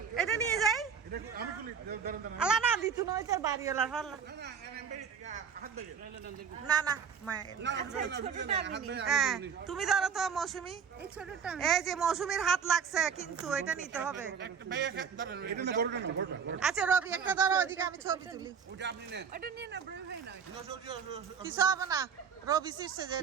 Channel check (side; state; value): left; quieter; 6.6 dB